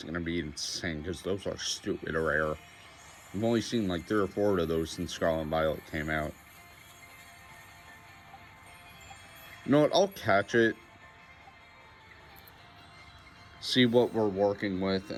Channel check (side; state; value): both; identical; correlation 1.00